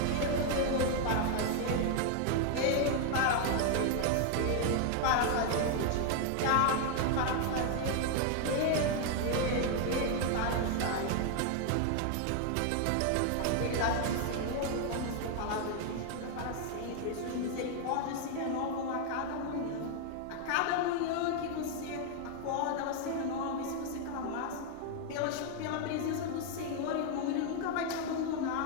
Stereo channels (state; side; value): different; both; correlation 0.00